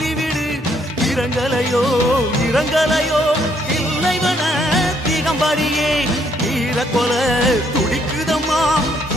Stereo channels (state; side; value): normal; both; correlation 0.70